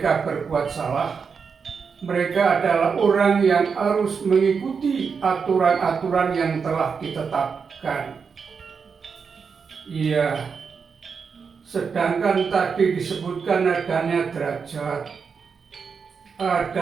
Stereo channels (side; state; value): left; quieter; 5.8 dB